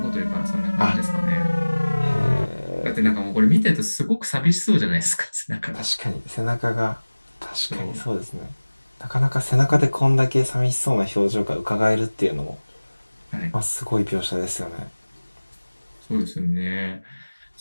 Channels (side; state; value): both; inverted; correlation -1.00